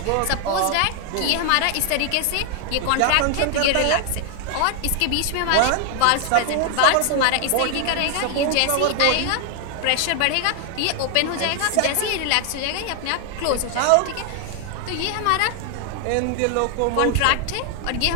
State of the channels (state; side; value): different; both; correlation 0.00